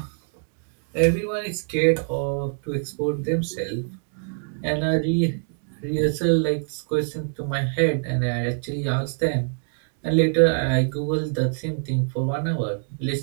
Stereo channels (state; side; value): silent; left; 55 dB below the other